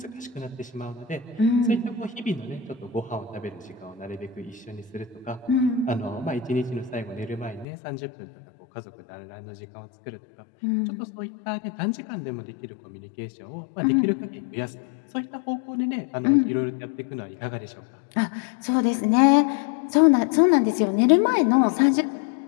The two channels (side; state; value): right; drops out; at 7.7 s